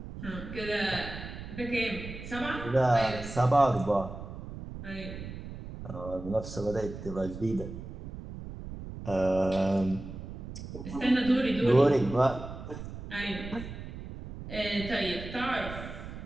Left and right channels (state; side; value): noise; right; rumble, 10 dB below the sound